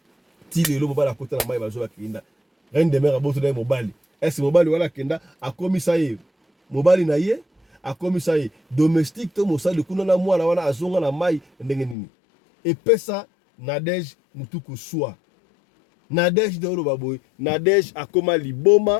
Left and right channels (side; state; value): right; drops out; at 12.0 s